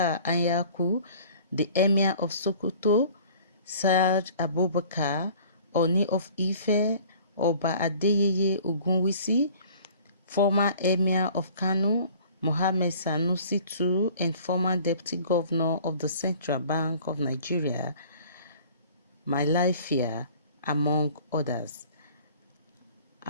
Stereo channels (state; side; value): inverted; both; correlation -0.50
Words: Anyaku, the Emir of Sokoto, Saad Abubakar, Oni of Ife, Oba Adeyeye Ogunwusi, former Emir of Kano, Mohammed Sanusi II, and former Deputy Governor of the Central Bank of Nigeria, Malafia, among others.